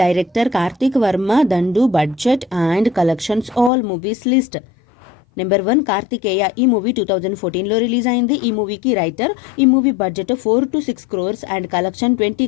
Karthik Varma, Dandu, budget and collections all movies list. Number 1 Karthikeya. ఈ movie 2014లో release అయింది. ఈ మూవీకి రైటర్. ఈ movie budget 4 to 6 crores and collection 20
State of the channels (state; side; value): drops out; right; at 3.7 s